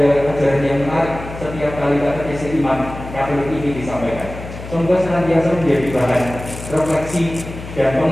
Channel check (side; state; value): left; noise; hum, 12 dB below the sound